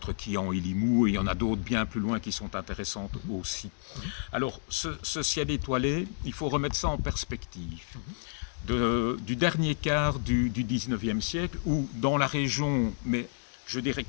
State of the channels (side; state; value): right; silent; digital silence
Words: Quillan et Limoux, et il y en a d'autres bien plus loin qui sont intéressantes aussi. Alors, ce ciel étoilé, il faut remettre ça en perspective. Du dernier quart du 19e siècle, où dans la région, mais je dirais